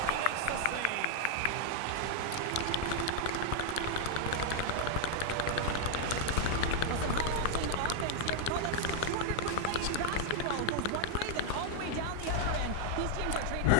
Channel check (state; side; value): different; both; correlation 0.00